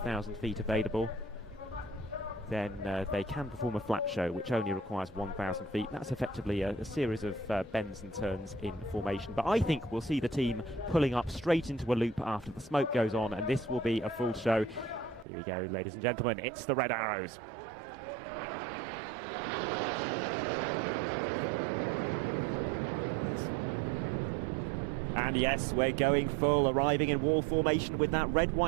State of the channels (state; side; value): drops out; left; at 15.2 s